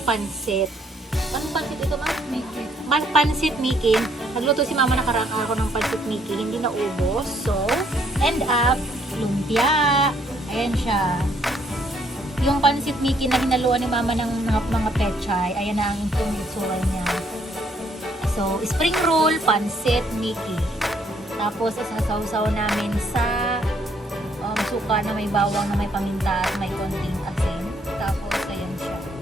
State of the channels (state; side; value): normal; both; correlation 0.68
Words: pansit. Anong pansit ito, ma'am? Pansit Mickey. Nagluto si mama nakaraan ako ng pansit Mickey. Hindi na ubos. So, end up, lumpia. Ayan siya. Yung pansit Mickey na hinaluan ni mama ng mga pechay. Ayan na ang itsura niya. So, spring roll, pansit Mickey. Tapos, isasawsaw namin sa suka na may bawang, na may paminta at may konting asin. Tapos, ayan siya.